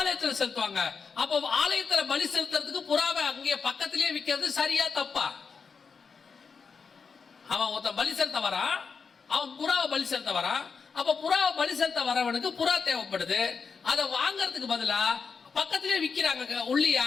செலுத்துவாங்க. அப்போ ஆலயத்துல பலி செலுத்துறதுக்கு புறாவை அங்கே பக்கத்திலேயே விற்கிறது சரியா தப்பா? அவன் ஒருத்தன் பலி செலுத்த வரான், அவன் புறாவை பலி செலுத்த வரான். அப்ப புறாவை பலி செலுத்த வரவனுக்கு புறா தேவைப்படுது. அதை வாங்கறதுக்கு பதிலா பக்கத்திலேயே விற்கிறாங்க உள்ளியா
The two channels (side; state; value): right; quieter; 5.5 dB